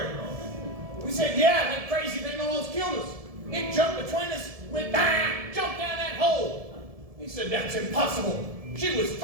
We said, yeah, that crazy thing almost killed us. It jumped between us, went bang, jumped down that hole. He said, that's impossible. She was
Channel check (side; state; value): left; late; 1.7 ms